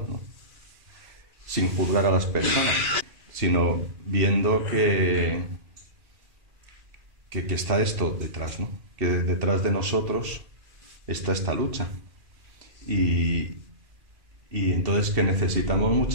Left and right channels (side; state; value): left; late; 2.4 ms